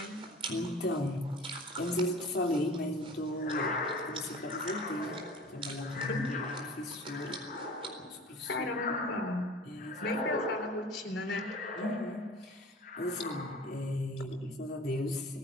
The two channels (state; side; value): normal; both; correlation 0.42